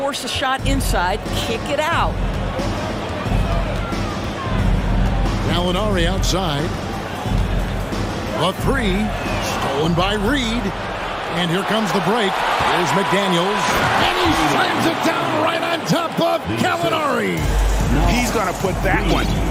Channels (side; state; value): both; identical; correlation 1.00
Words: a shot inside. Kick it out. Gallinari outside. The 3 stolen by Reed. And here comes the break. Here's McDaniels. And he slams it down right on top of Gallinari. He's going to put that one